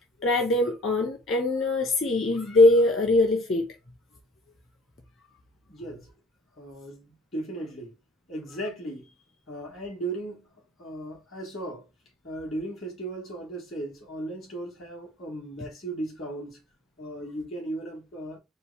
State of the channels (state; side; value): normal; both; correlation 0.53